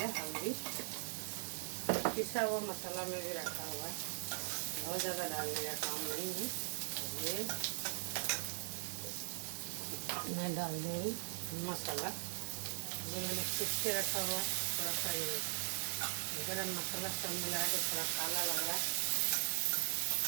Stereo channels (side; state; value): left; silent; 51 dB below the other